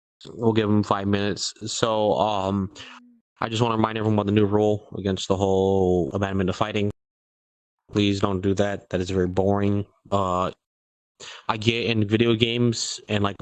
We'll give him 5 minutes. So, I just want to remind everyone about the new rule against the whole abandonment of fighting. Please don't do that. That is very boring. I get in video games and like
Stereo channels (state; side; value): identical; both; correlation 1.00